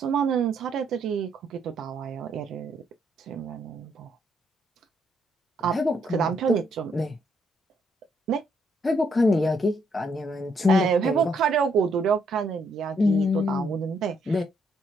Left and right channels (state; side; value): normal; both; correlation 0.73